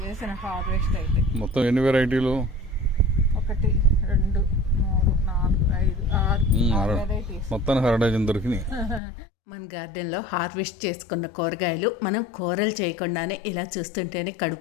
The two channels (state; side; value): drops out; right; at 9.0 s